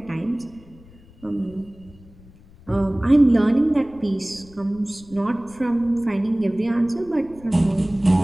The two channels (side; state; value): left; noise; rumble, 24 dB below the sound